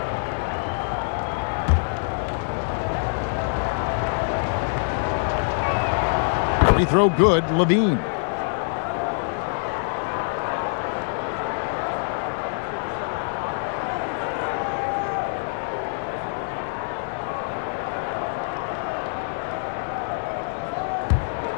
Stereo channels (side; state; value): right; silent; digital silence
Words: Free throw good, Levine.